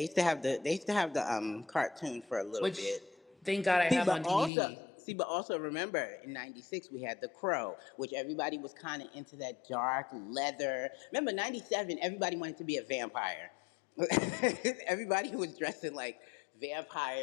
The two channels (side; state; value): right; drops out; at 4.5 s